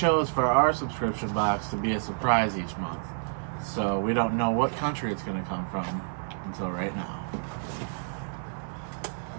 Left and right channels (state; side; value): silent; left; 55 dB below the other